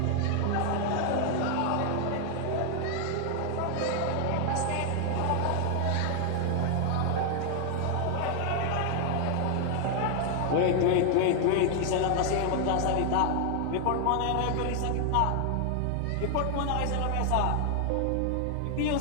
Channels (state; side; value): different; both; correlation 0.00